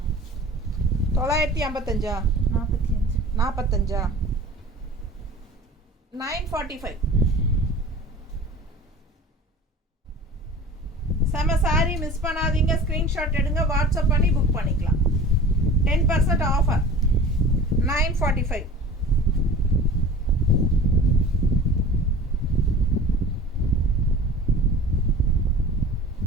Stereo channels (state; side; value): normal; both; correlation 0.40